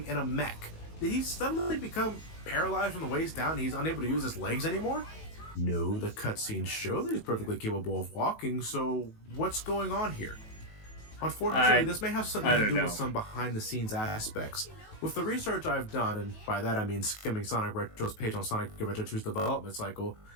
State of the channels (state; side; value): late; right; 18 ms